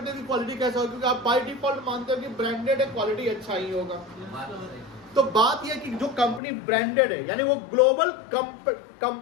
कि क्वालिटी कैसा हो, क्योंकि आप बाय डिफॉल्ट मानते हो कि ब्रांडेड है, क्वालिटी अच्छा ही होगा। तो बात यह कि जो कंपनी ब्रांडेड है यानी वो ग्लोबल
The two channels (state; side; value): drops out; right; at 6.4 s